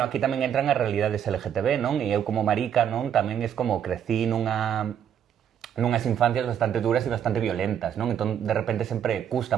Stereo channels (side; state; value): left; quieter; 9.1 dB